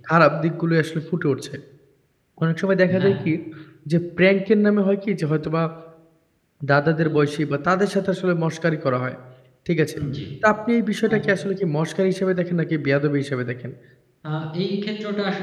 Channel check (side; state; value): both; identical; correlation 1.00